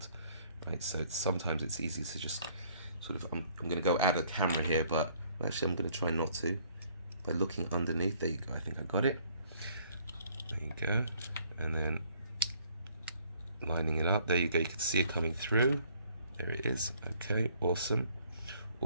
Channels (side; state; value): both; inverted; correlation -0.62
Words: right? So sometimes it's easy to just sort of, I'm going to go out of the camera here, but actually I'm going to try not to, by looking underneath. There you go. I think I got it. There you go. And then lining it up. There you go. You can see it coming through. There it is. Okay, awesome.